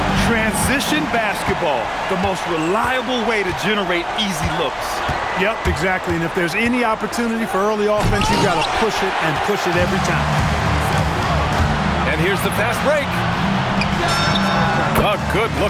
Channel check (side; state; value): both; identical; correlation 1.00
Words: Transition basketball, the most reliable way to generate easy looks. Yep, exactly. And if there's any opportunity for early offense, you've got to push it and push it every time. And here's the fast break. A